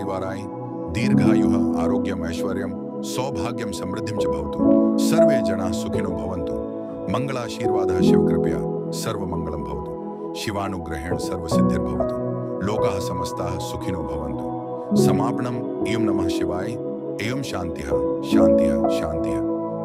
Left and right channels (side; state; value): both; identical; correlation 1.00